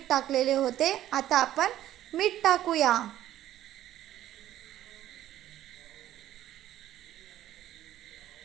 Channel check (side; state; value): left; quieter; 12.9 dB